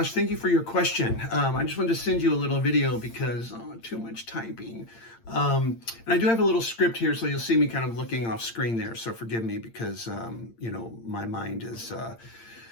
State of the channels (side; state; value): right; late; 8.8 ms